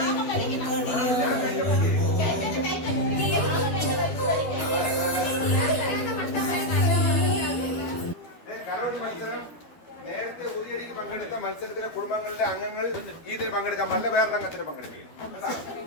കലവടി മത്സരം നേരത്തെ ഉദയടിയിൽ പങ്കെടുത്ത മത്സരത്തിലെ കുടുംബങ്ങളിലെ അംഗങ്ങൾ ഇതിൽ പങ്കെടുക്കാൻ പാടില്ല, വേറെ രംഗത്തിന് പങ്കെടുക്കുകയും.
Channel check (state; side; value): late; right; 12 ms